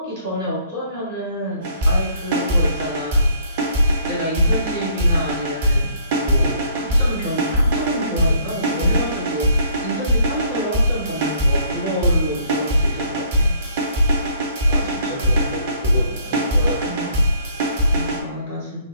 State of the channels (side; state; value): both; inverted; correlation -0.62